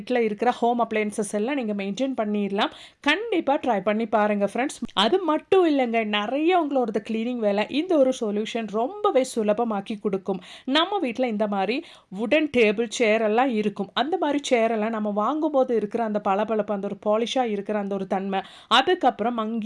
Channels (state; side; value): identical; both; correlation 1.00